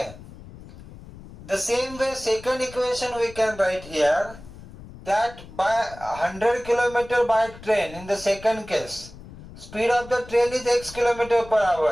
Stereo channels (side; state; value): left; noise; rumble, 17 dB below the sound